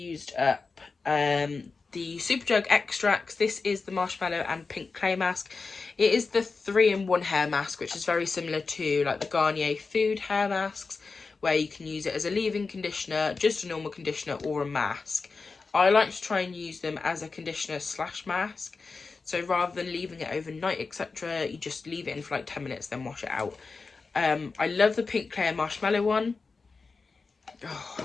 up the Superdrug Extracts. This is the marshmallow and pink clay mask. It is the 3-in-1 hair mask, which is very similar to like the Garnier Food hair masks, where you can use it as a leave-in conditioner, just a normal conditioner, or a mask. I like to try and use them as a conditioner / mask. So rather than leaving it overnight, etc., you just leave it in for like 10 minutes, then wash it out. I love the pink clay marshmallow one. Oh,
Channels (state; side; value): quieter; right; 4.4 dB